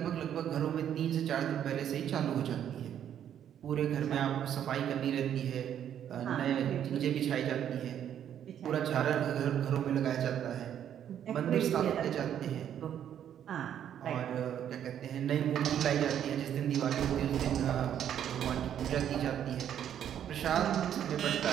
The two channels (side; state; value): left; quieter; 9.8 dB